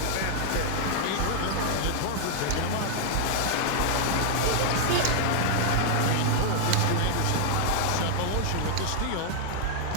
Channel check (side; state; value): both; different; correlation 0.00